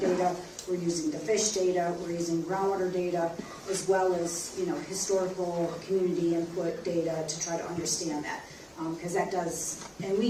we're using the fish data, we're using groundwater data, as well as, you know, historical community input data to try to understand that. Because that does, and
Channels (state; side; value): identical; both; correlation 1.00